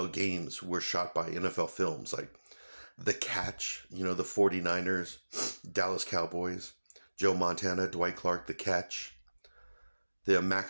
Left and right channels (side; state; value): both; inverted; correlation -1.00